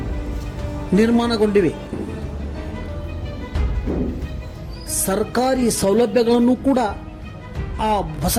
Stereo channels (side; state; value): both; identical; correlation 1.00